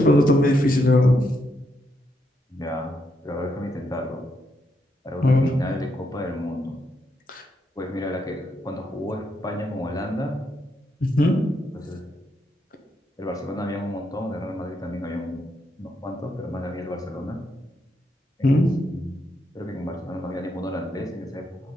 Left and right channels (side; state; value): both; normal; correlation 0.79